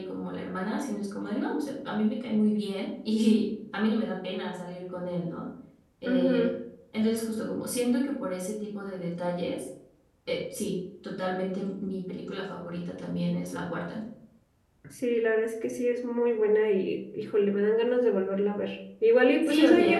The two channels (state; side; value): identical; both; correlation 1.00